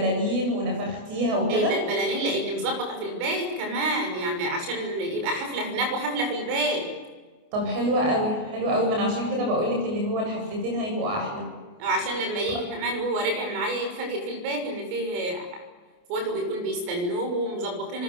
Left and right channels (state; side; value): late; left; 28 ms